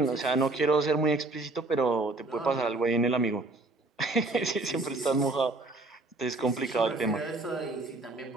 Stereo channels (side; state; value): left; quieter; 3.0 dB